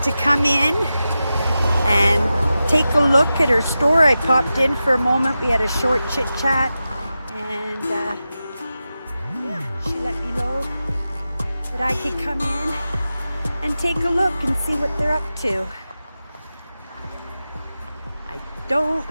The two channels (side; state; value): both; inverted; correlation -0.92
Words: to come in and take a look at her store. I popped in for a moment. We had a short chit chat and yeah, she let me know that I could come in and take a look and see what they're up to.